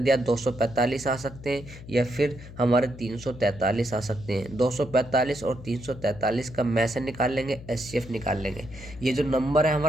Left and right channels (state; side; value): noise; left; hum, 15 dB below the sound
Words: 245 आ सकते हैं या फिर हमारे 343 आ सकते हैं। 245 और 343 का में से निकाल लेंगे, एचसीएफ निकाल लेंगे। ये जो नंबर है